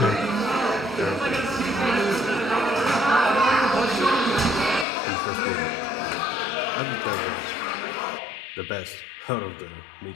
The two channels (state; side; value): drops out; right; at 4.9 s